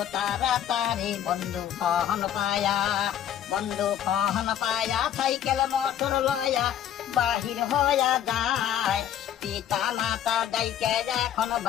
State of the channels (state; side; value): quieter; right; 10.5 dB